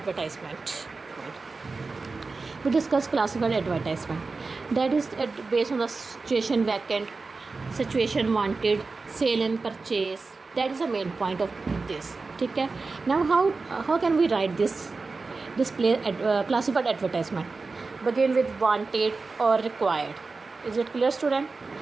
We discuss classified advertisement. That is based on the situation vacant, situation wanted, sale and purchase. That is the main point of this. Okay. Now how can we write this display classified advertisement? Begin with wanted or required. Is it clear, student?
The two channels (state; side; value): quieter; left; 4.0 dB